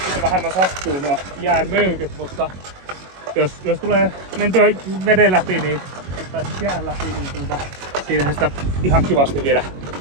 vähemmän sattuu nuo jään möykyt, mutta jos tulee mentyä veden läpi, niin, tai siis jään läpi, niin siinähän sitä ihan kivasti vielä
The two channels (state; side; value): late; left; 22 ms